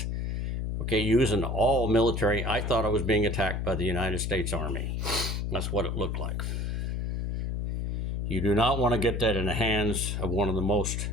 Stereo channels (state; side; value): noise; left; hum, 1 dB below the sound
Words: Okay, using all military. I thought I was being attacked by the United States Army. That's what it looked like. You do not want to get that in the hands of one of the most